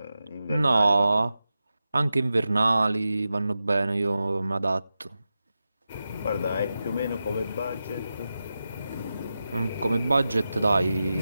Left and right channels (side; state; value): both; inverted; correlation -0.92